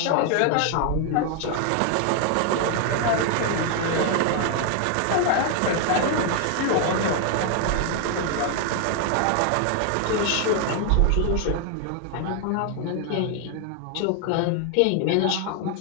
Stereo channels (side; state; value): both; different; correlation 0.00